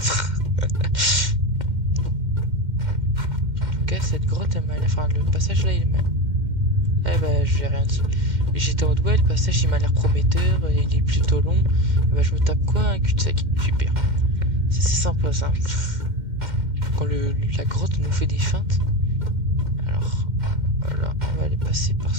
En tout cas, cette grotte, elle m'a l'air... Enfin, le passage là, il m'a... Eh bah, je vais rien dire. J'étais en mode, ouais, le passage, il m'a l'air prometteur, il est plutôt long. Et bah, je me tape quoi? Un cul-de-sac. Super. C'est sympa, ça. Quand la grotte nous fait des feintes. Alors, voilà, on va aller passer par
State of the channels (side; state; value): left; late; 2.1 ms